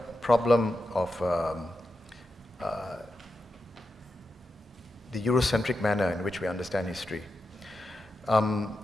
problem of the Eurocentric manner in which we understand history. Now,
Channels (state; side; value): normal; both; correlation 0.89